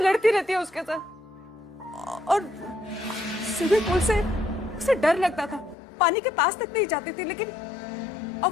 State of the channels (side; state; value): right; drops out; at 5.8 s